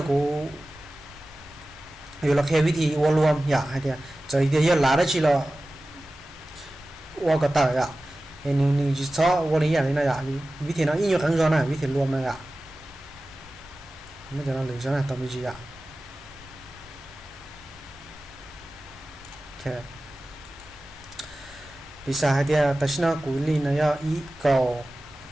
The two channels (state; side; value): normal; both; correlation 0.96